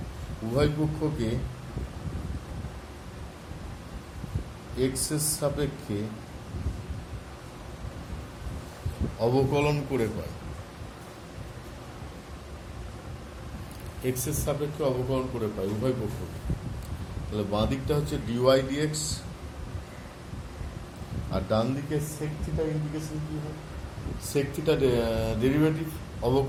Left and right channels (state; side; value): identical; both; correlation 1.00